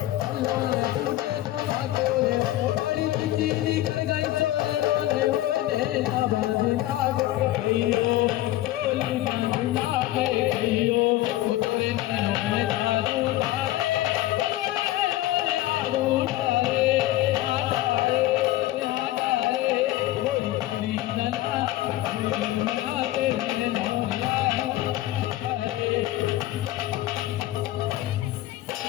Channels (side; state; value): right; quieter; 15.6 dB